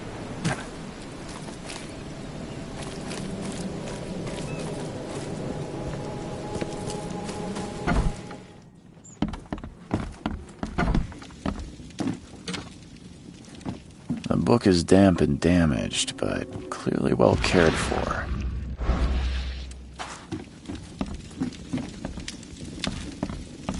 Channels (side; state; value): both; identical; correlation 1.00